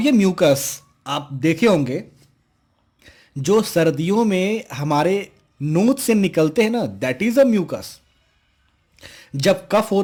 ये म्यूकस आप देखे होंगे जो सर्दियों में हमारे नोज से निकलते हैं ना, दैट इज अ म्यूकस। जब कफ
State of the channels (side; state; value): both; identical; correlation 1.00